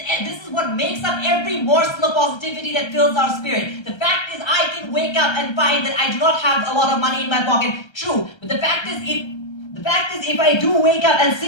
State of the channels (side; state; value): right; late; 1.3 ms